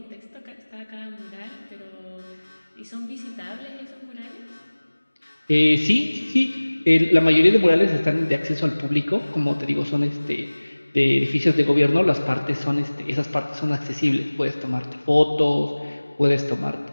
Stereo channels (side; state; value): both; inverted; correlation -1.00